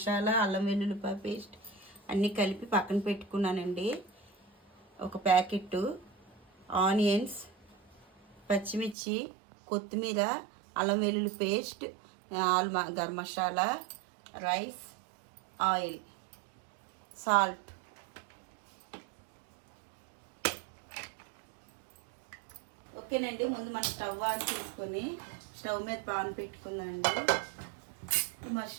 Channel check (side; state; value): left; drops out; at 9.0 s